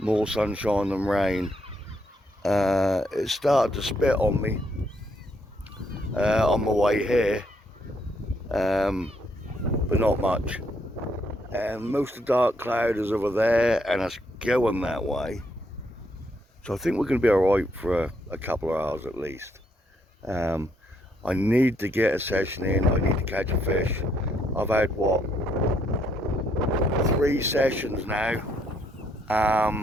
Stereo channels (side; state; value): both; normal; correlation 0.73